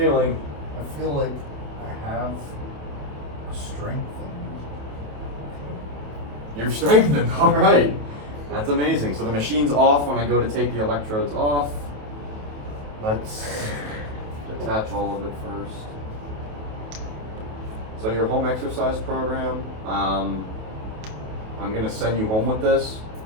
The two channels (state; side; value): late; left; 28 ms